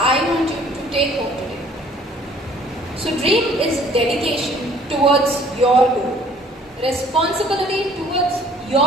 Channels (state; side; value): normal; both; correlation 0.56